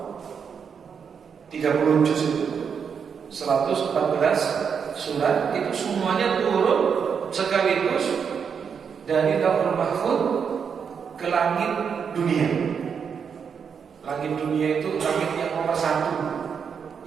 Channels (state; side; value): quieter; left; 6.7 dB